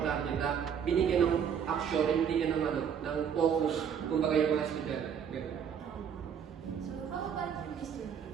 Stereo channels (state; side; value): quieter; left; 7.8 dB